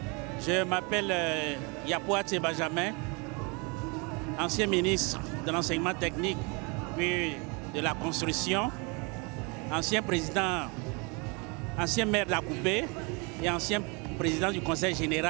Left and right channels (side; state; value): left; quieter; 30.4 dB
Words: Je m'appelle Yapouate Benjamin, ancien ministre de l'enseignement technique puis de la construction, ancien président, ancien maire d'Akoupé et ancien président du conseil